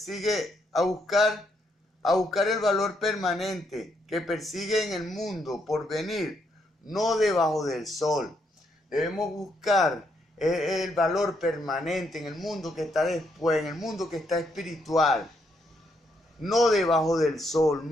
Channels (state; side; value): normal; both; correlation 0.76